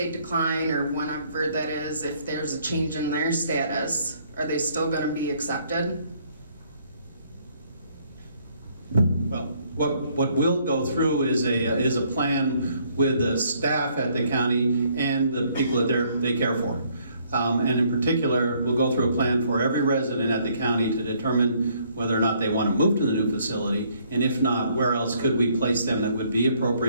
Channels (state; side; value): inverted; both; correlation -0.66